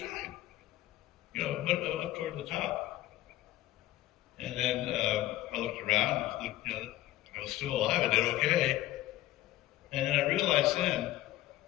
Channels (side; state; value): right; quieter; 15.3 dB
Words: Up toward the top. And then I looked around, I was still alive, I did okay. And then I realized then